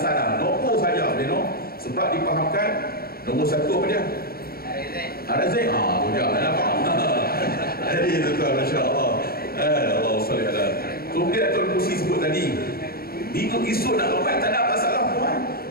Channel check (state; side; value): late; right; 0.44 ms